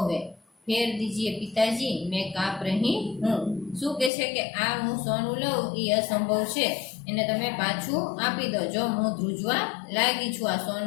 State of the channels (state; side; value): drops out; right; at 4.1 s